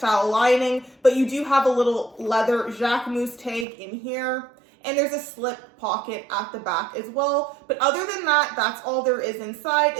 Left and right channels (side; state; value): left; drops out; at 3.7 s